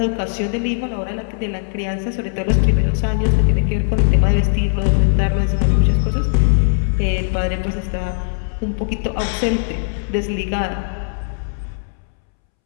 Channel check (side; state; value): right; silent; 67 dB below the other